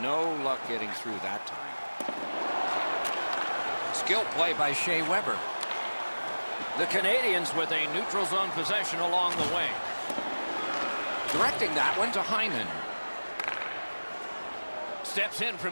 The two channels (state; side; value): inverted; both; correlation -1.00